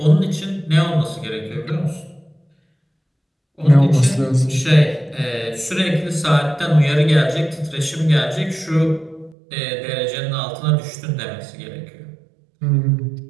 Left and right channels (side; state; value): left; drops out; at 9.3 s